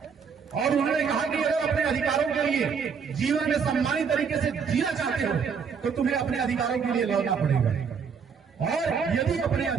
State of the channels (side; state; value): left; quieter; 6.3 dB